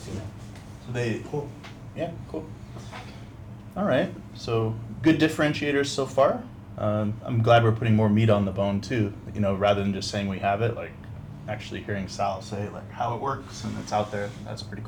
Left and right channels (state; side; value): identical; both; correlation 1.00